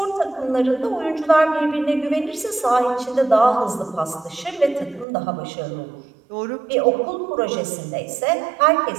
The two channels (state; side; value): drops out; left; at 5.1 s